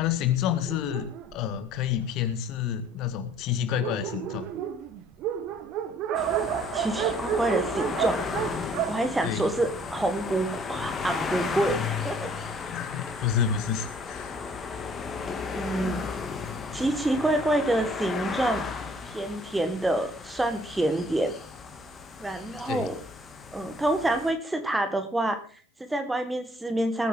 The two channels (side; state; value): both; normal; correlation 0.59